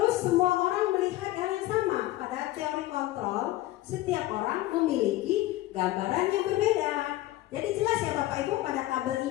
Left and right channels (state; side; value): quieter; right; 16.6 dB